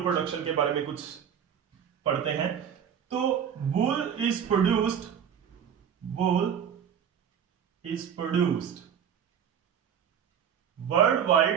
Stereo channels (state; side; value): quieter; left; 8.4 dB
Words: प्रोडक्शन के बारे में कुछ पढ़ते हैं। तो वूल is produced